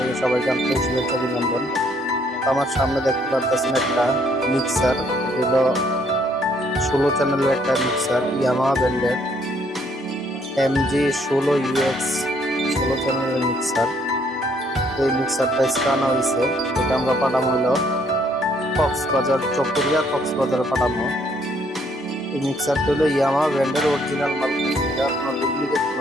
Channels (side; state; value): both; normal; correlation 0.67